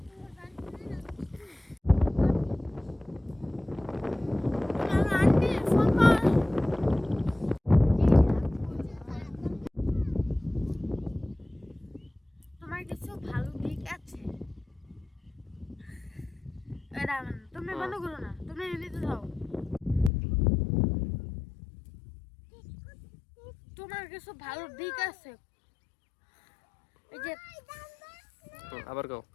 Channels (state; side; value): drops out; right; at 20.1 s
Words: আমার আন্টি ফোন কর। তোমার কিছু ভালো দিক আছে এটা তুমি বন্ধ করো না, তুমি এমনিতে যাও। তোমার কিছু ভালো দিক আছে এই যে আবার গাও।